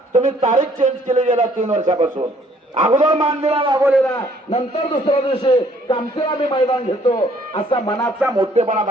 तुम्ही तारीख चेंज केली गेला 3 वर्षापासून. अगोदर मान दिला वाघोलीला, नंतर दुसऱ्या दिवशी कामतीला मी मैदान घेतो असा मनाचा मोठेपणा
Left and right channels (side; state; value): both; normal; correlation 0.62